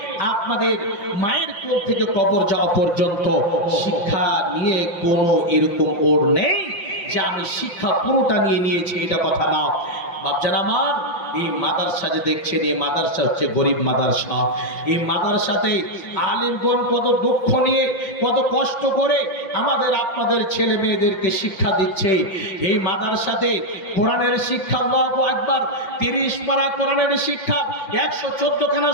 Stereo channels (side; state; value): right; late; 5.7 ms